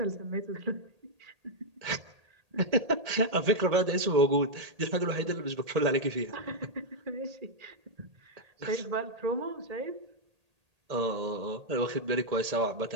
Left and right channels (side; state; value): left; late; 1.8 ms